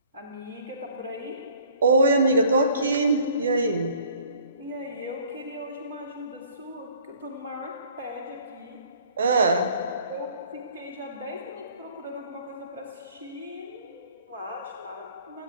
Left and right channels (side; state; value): both; inverted; correlation -0.55